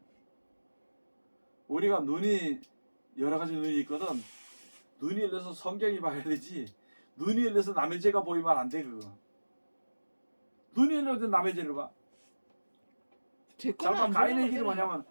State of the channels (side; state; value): both; inverted; correlation -1.00